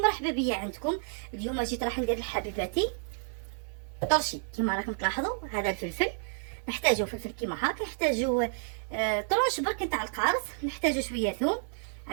بيا عندكم. اليوم جيت راح ندير لحبيباتي طرشي. كما راكم تلاحظوا هذا الفلفل نحتاجو فلفل كيما هاك، نحتاجو طرش برك نتاع القارص، نحتاجو شويه ثوم،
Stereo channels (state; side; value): silent; left; digital silence